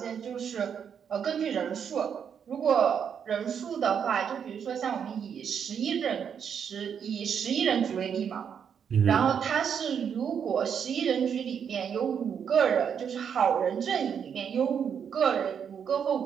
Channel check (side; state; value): left; quieter; 7.6 dB